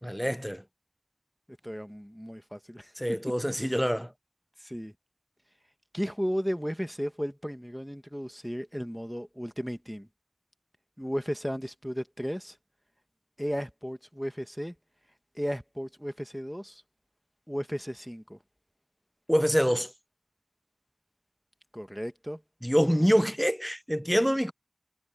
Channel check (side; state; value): both; identical; correlation 1.00